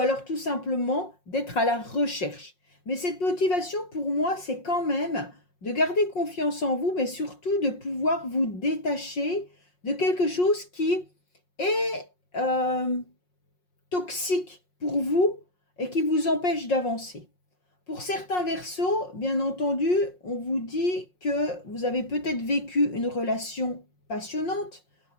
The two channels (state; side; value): late; right; 5.5 ms